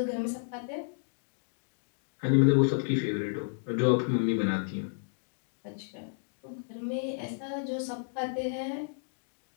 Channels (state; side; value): silent; right; digital silence